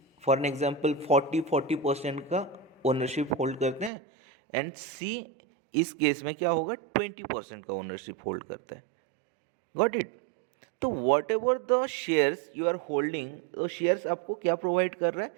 for an example 40% का ओनरशिप होल्ड करते हैं एंड सी इस केस में क्या होगा? 20% का ओनरशिप होल्ड करता है। Got it? तो whatever the shares you are holding, तो शेयर्स आपको क्या प्रोवाइड कर रहा है?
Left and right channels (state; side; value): drops out; left; at 3.9 s